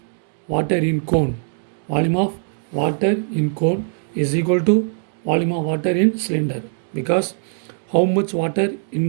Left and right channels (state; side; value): silent; left; digital silence